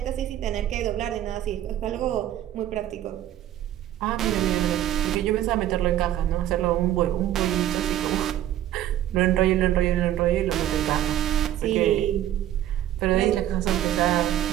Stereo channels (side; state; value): left; quieter; 12.3 dB